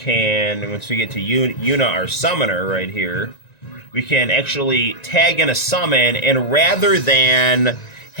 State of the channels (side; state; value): right; late; 1.9 ms